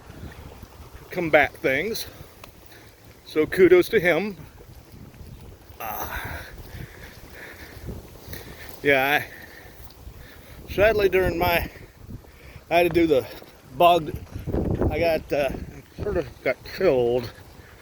combat things. So kudos to him. Yeah, sadly during I had to do the bog. I got sort of got killed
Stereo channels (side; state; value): both; identical; correlation 1.00